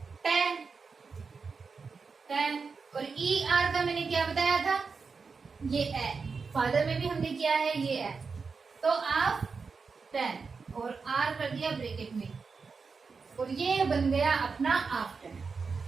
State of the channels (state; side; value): quieter; left; 4.9 dB